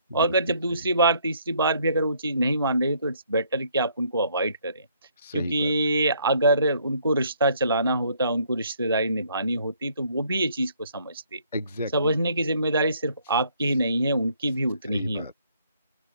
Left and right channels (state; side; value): inverted; both; correlation -0.65